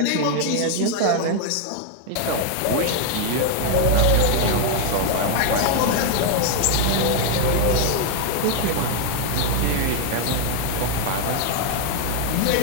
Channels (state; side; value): different; both; correlation 0.00